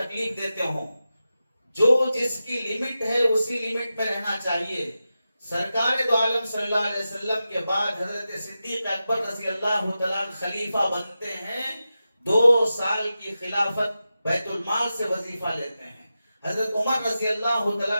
دیتے ہوں، جو جس کی لمٹ ہے اسی لمٹ میں رہنا چاہیے۔ سرکار دو عالم صلی اللہ علیہ وسلم کے بعد حضرت صدیق اکبر رضی اللہ تعالیٰ خلیفہ بنتے ہیں، 2 سال کی خلافت بیت المال سے وظیفہ لیتے ہیں۔ حضرت عمر رضی اللہ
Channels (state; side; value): inverted; both; correlation -0.92